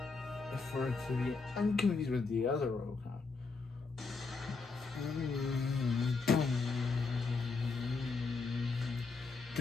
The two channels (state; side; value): quieter; right; 4.3 dB